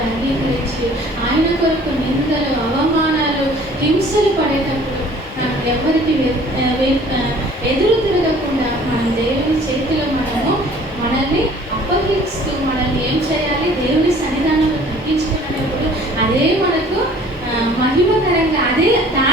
అంగీకరించి ఆయన కొరకు నిందలు, అవమానాలు, హింసలు పడేటప్పుడు మనం ఎవరికి ఎదురు తిరగకుండా మనం దేవుని చేతిలో మనల్ని అప్పగిస్తూ మనల్ని ఏం చేయాలి? దేవుని సన్నిధానంలో తగ్గించుకునేటప్పుడు అదే మనకు మహిమకరంగా, అదే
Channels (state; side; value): normal; both; correlation 0.52